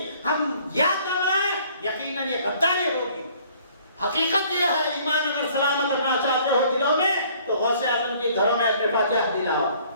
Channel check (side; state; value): both; inverted; correlation -0.57